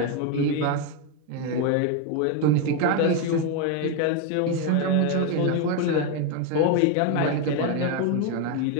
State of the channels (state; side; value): different; both; correlation 0.02